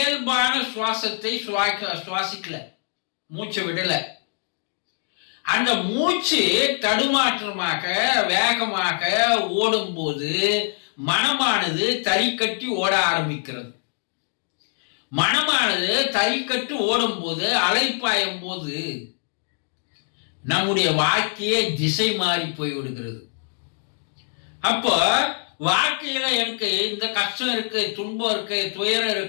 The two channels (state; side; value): silent; right; 63 dB below the other